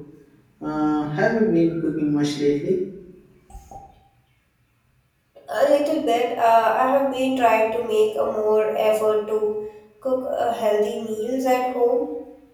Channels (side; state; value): both; identical; correlation 1.00